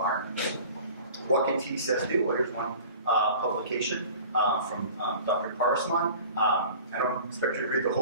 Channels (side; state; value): both; inverted; correlation -0.43